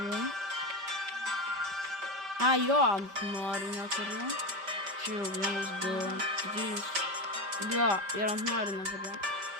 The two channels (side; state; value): left; late; 5.1 ms